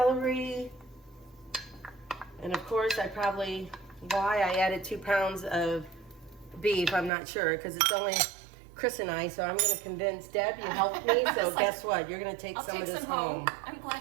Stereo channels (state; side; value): drops out; left; at 7.1 s